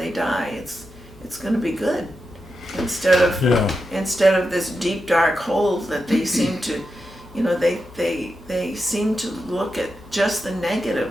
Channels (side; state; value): both; normal; correlation 0.88